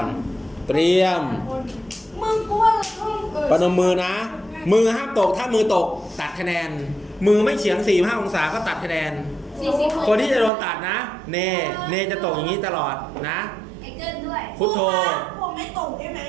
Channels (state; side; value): drops out; left; at 10.5 s